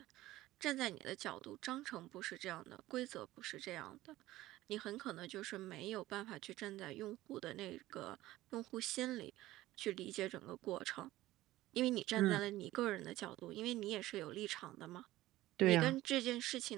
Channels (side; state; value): left; quieter; 16.4 dB